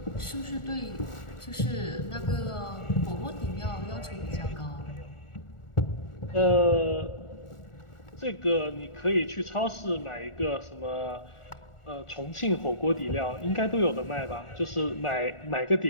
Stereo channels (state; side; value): late; right; 1.4 ms